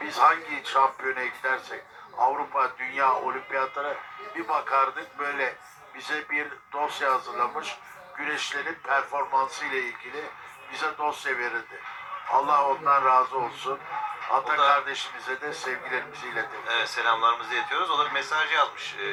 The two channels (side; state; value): both; identical; correlation 1.00